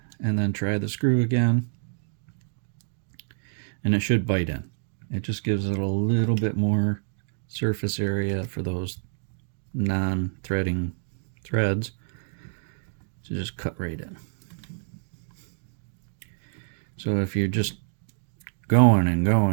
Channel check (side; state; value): left; silent; digital silence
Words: and then try the screw again, and it should bite in. It just gives it a little bit more surface area for those non-threading threads to just cut right in. So if you're just going and